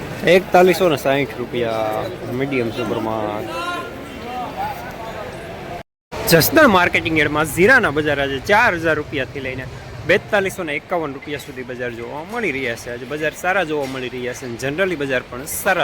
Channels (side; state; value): both; identical; correlation 1.00